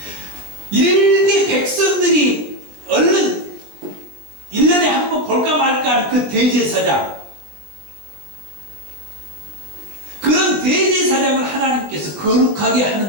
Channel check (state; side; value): late; left; 19 ms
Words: 일개 백성들이 얼른 1년에 한 번 볼까 말까 하는 그 대제사장, 그런 대제사장을 하나님께서 거룩하게